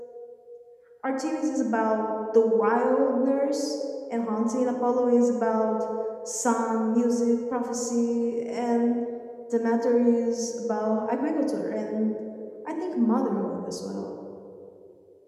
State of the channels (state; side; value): identical; both; correlation 1.00